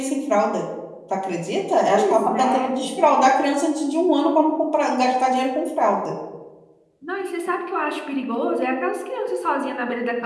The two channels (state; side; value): identical; both; correlation 1.00